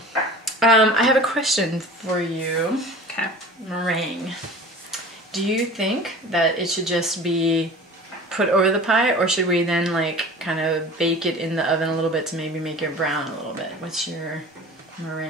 I have a question for you. Okay. Meringue. Do you think that it should just be put over the pie, or should we then like kind of bake it in the oven a little bit to maybe make it brown a little bit? What's your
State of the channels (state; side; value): normal; both; correlation 0.40